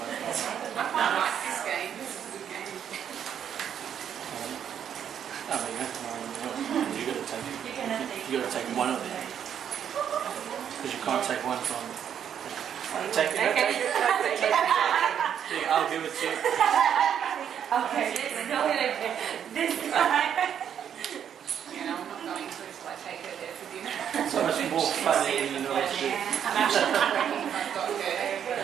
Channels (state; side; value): quieter; left; 8.8 dB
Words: from there. I quite like this game. This is a good game. Oh, there you go. You got to take. You got to take one of them because you can't take one from. Take it. Take it. Yeah, I'll give it to you. Okay, this time. You know, I'm not going to until I take her there for dinner. So much more fun than you know what to do. I'm actually working. I've got